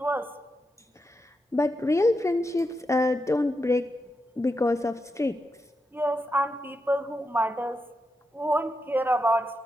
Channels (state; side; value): normal; both; correlation 0.86